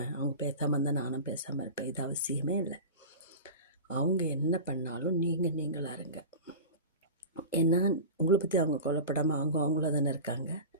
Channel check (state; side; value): inverted; both; correlation -0.31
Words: அவங்க பேசாமல் இருந்தால் நானும் பேசாமல் இருப்பேன். இது அவசியமே இல்லை. அவங்க என்ன பண்ணாலும் நீங்களாக இருங்க. ஏன்னா உங்களை பற்றி அவங்க கொல்லப்படாமல் அவங்கள தானே இருக்காங்க.